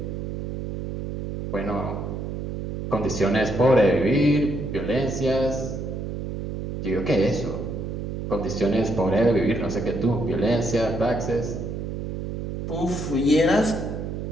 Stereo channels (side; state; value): right; noise; hum, 5 dB below the sound